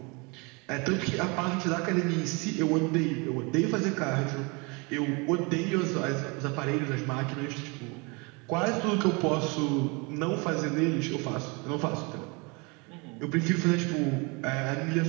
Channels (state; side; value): quieter; left; 29.4 dB